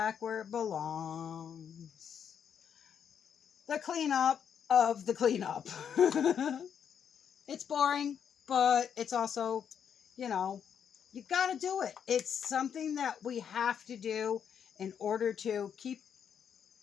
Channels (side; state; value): right; quieter; 8.0 dB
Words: where it belongs. The cleanup of the cleanup. It's boring, but it's also, you know, you gotta do it. It's something that we have to do in order to